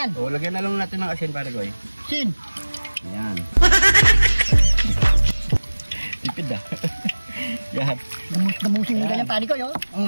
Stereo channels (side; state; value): both; inverted; correlation -1.00